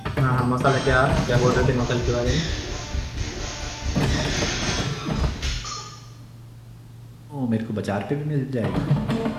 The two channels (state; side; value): identical; both; correlation 1.00